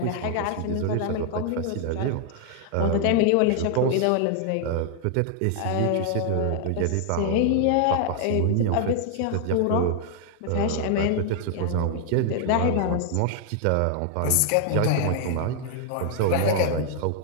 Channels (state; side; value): different; both; correlation 0.00